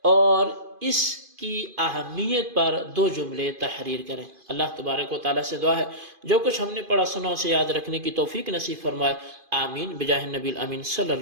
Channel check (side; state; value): left; late; 2.5 ms